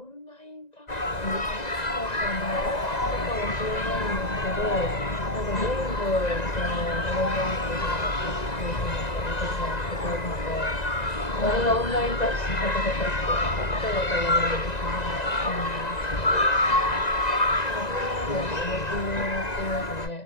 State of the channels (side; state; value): right; late; 1.9 ms